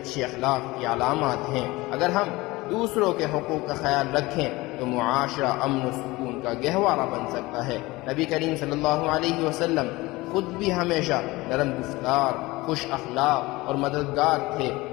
اخلاق کی علامات ہیں۔ اگر ہم دوسروں کے حقوق کا خیال رکھیں تو معاشرہ امن و سکون کا گہوارہ بن سکتا ہے۔ نبی کریم صلی اللہ علیہ وسلم خود بھی ہمیشہ نرم گفتار، خوش اخلاق اور مددگار تھے۔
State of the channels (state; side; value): quieter; right; 20.9 dB